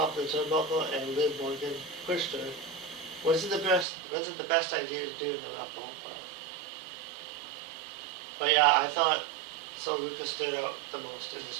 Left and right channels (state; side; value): drops out; left; at 3.9 s